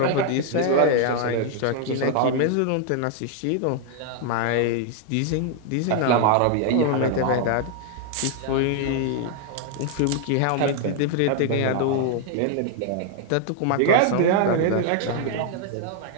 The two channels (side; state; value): both; different; correlation 0.00